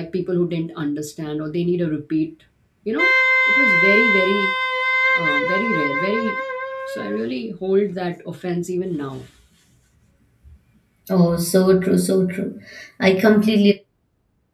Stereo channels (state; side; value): identical; both; correlation 1.00